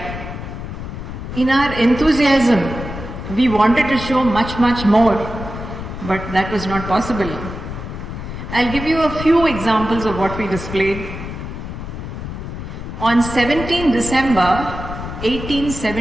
In our enthusiasm, we wanted to show much more, but that was not possible. I'll give you a few examples of what we displayed. On 17 December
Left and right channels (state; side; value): noise; left; rumble, 8 dB below the sound